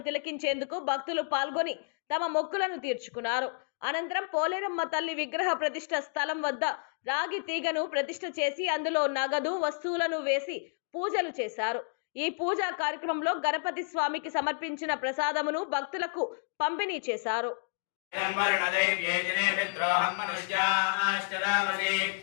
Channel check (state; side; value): silent; right; digital silence